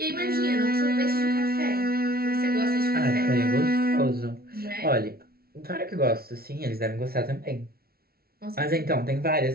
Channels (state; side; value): late; left; 0.44 ms